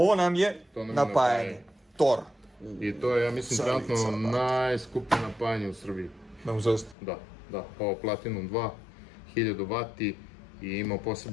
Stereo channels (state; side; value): drops out; right; at 7.0 s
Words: nam je napajanje. Tor. I to je, ja mislim, trenutno najskuplje napajanje u Srbiji. Da, ovo Platinum 2, 1000 W i ima